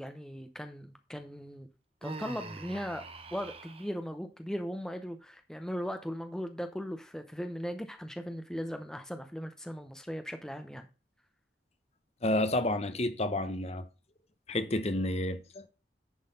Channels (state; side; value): normal; both; correlation 0.61